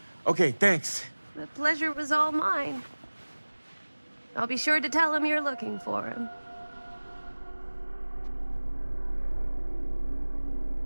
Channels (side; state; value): both; inverted; correlation -1.00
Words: Okay, thanks. The pleasure was all mine. I'll be sure to tell him you're looking for him.